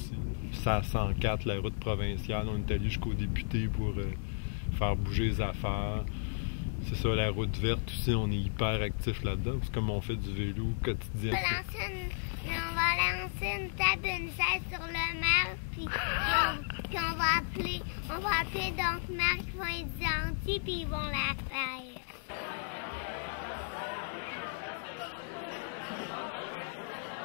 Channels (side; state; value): right; silent; digital silence